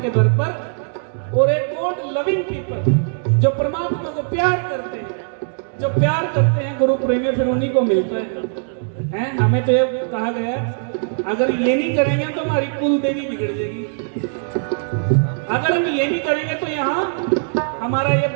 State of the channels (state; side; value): silent; left; digital silence